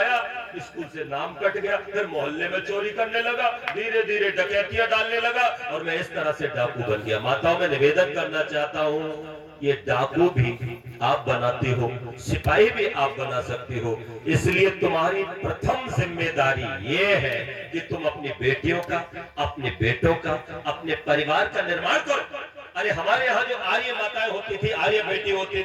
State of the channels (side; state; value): both; identical; correlation 1.00